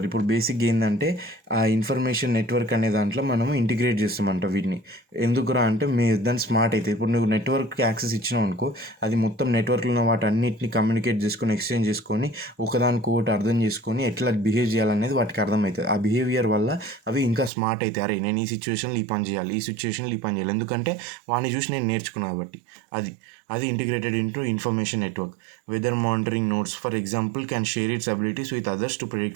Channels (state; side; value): drops out; left; at 17.5 s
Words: ఇప్పుడు బేసిక్ ఏంటంటే ఆ ఇన్ఫర్మేషన్ నెట్వర్క్ అనే దాంట్లో మనం ఇంటిగ్రేట్ చేస్తామంట వీటిని. ఎందుకురా అంటే దాన్ని స్మార్ట్ అయితే, ఇప్పుడు నువ్వు నెట్వర్క్కి యాక్సెస్ ఇచ్చినావు అనుకో, అది మొత్తం నెట్వర్క్లో ఉన్న వాటి అన్నిటిని కమ్యూనికేట్ చేసుకొని ఎక్స్చేంజ్ చేసుకొని ఒకదానికొకటి అర్థం చేసుకొని ఎట్లా బిహేవ్ చేయాలనేది వాటికి అర్థమవుతుంది. ఆ బిహేవియర్ వల్ల అవి ఇంకా స్మార్ట్ అవుతాయి. అరే నేను ఈ సిచ్యువేషన్లో ఈ పని చేయాలి, ఈ సిచ్యువేషన్లో ఈ పని చేయాలి, ఎందుకంటే వాడిని చూసి నేను నేర్చుకున్నాను కాబట్టి. అది integrated into information network. Weather monitoring nodes for example can share its abilities with others to